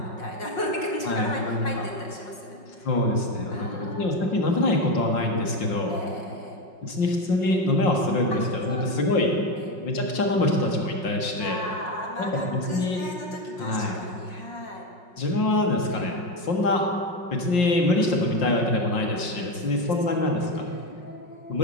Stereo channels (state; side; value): late; right; 5.7 ms